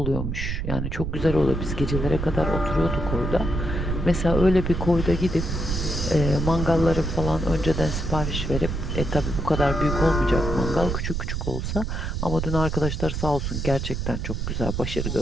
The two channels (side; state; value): right; noise; rumble, 2 dB below the sound